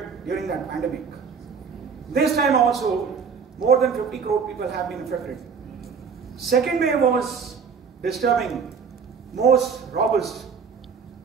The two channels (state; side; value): quieter; left; 6.1 dB